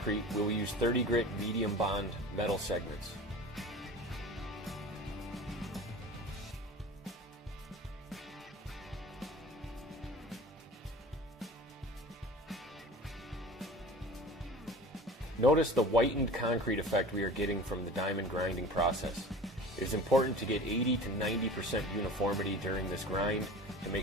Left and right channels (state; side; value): normal; both; correlation 0.39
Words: we will use 30 grit medium bond metal segments. Notice the whitened concrete effect we are getting from the diamond grinding process. It is important to get 80 to 90% uniformity during this grind to